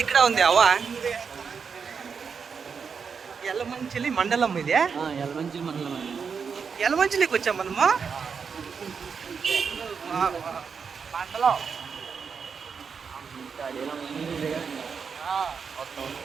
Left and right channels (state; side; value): quieter; left; 6.0 dB